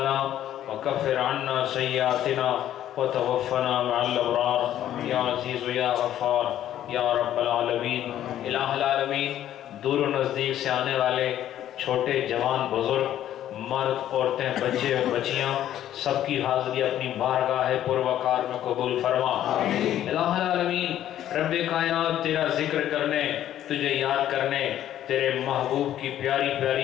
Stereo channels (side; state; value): right; quieter; 11.8 dB